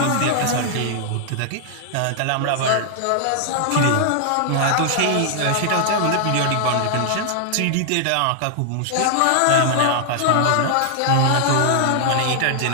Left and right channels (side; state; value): both; different; correlation 0.00